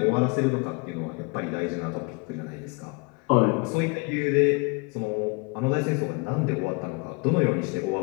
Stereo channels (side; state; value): right; quieter; 29.6 dB